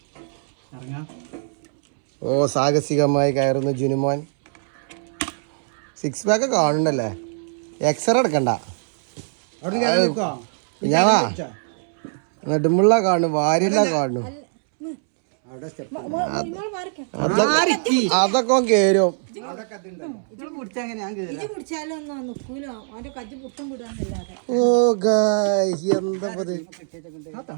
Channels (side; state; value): left; silent; 64 dB below the other